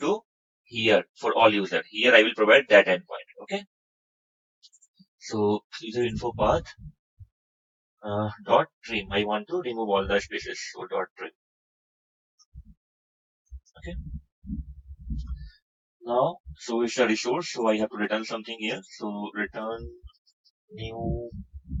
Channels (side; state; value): both; identical; correlation 1.00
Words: here for all user. Here I will provide that endpoint. Okay. So user info path dot trim. I want to remove all the spaces. So dot trim. Okay. Now, so it's a resource. So I have to return something here. So return new